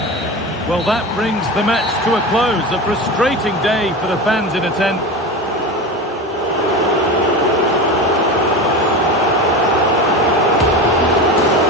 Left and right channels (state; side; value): normal; both; correlation 0.26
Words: Well, that brings the match to a close. A frustrating day for the fans in attendance.